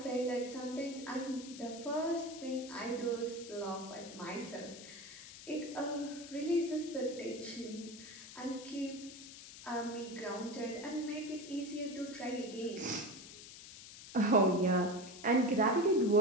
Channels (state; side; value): noise; left; hiss, 14 dB below the sound